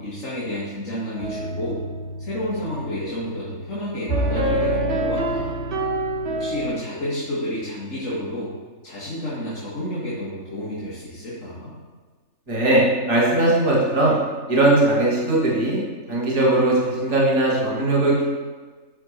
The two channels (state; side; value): late; right; 3.4 ms